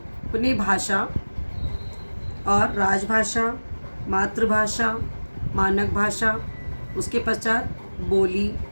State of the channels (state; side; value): inverted; both; correlation -1.00